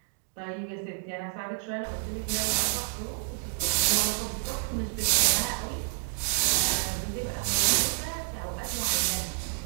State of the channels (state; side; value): silent; left; digital silence